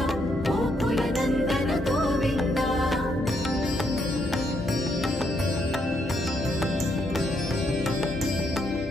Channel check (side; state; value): both; normal; correlation 0.76